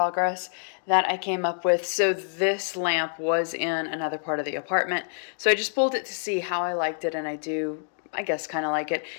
that I came up with. So this lamp was in another part of the apartment. So I just pulled it to see how I liked it, and I do, I guess, kind of like it.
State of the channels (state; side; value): silent; right; digital silence